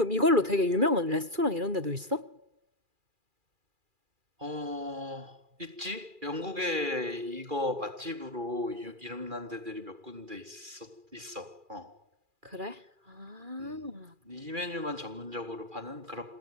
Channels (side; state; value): left; late; 2.4 ms